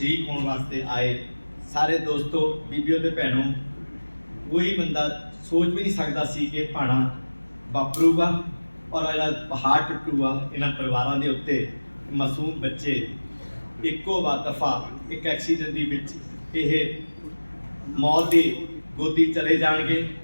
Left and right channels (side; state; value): both; inverted; correlation -1.00